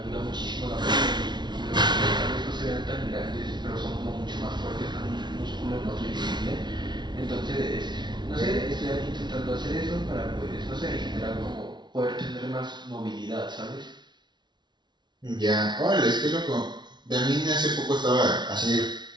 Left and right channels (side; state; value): left; late; 0.21 ms